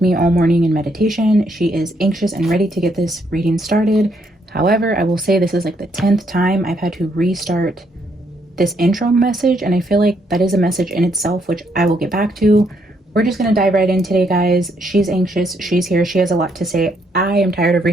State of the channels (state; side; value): normal; both; correlation 0.73